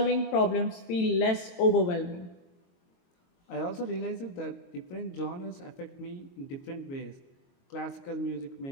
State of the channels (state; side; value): late; right; 23 ms